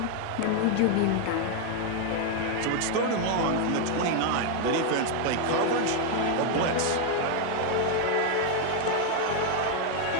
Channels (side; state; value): both; different; correlation 0.01